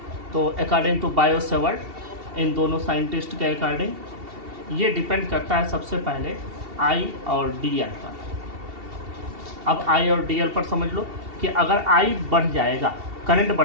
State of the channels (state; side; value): late; left; 2.7 ms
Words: तो अकॉर्डिंग टू बायो-सेवर्ट, इन दोनों साइंटिस्ट के अकॉर्डिंग ये डिपेंड करता है सबसे पहले I और DL पर। अब I और DL पर समझ लो कि अगर I बढ़ जाएगा, करंट